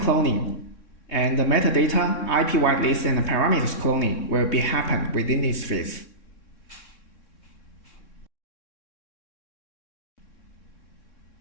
and the metadata, IP whitelist, and the parameters cloning will be happen within this phase.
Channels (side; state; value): right; late; 3.6 ms